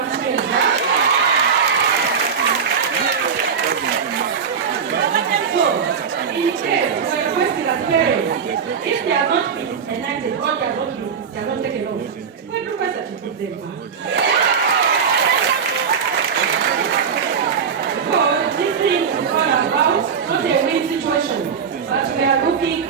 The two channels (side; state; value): left; quieter; 6.6 dB